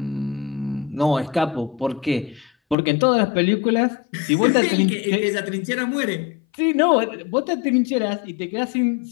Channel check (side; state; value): right; drops out; at 2.8 s